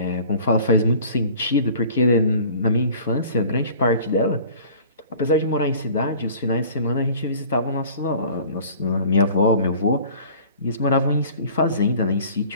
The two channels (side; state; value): both; inverted; correlation -0.47